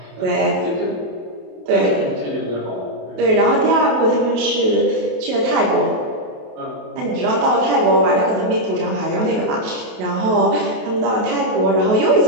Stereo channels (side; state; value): left; late; 28 ms